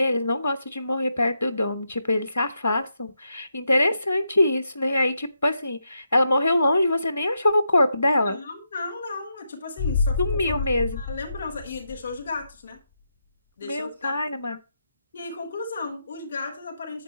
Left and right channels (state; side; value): inverted; both; correlation -0.83